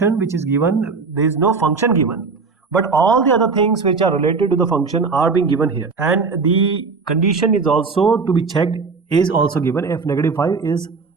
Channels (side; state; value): left; quieter; 4.7 dB